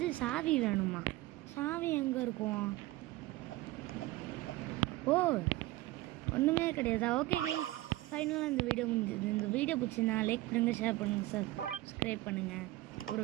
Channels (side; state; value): left; quieter; 18.2 dB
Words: சாவி வேணுமா? சாவி எங்கே இருக்கும்? ஓ ஒன்றுமே கிடையாதா? ஓகே ஃபைனலாக இந்த வீடியோ முடிஞ்சது. இந்த வீடியோ பிடிச்சிருந்தா லைக் பண்ணுங்கள், ஷேர் பண்ணுங்கள், சப்ஸ்கிரைப் பண்ணுங்கள். ஒரு